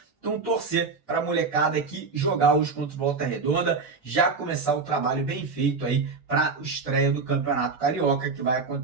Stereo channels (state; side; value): quieter; left; 4.6 dB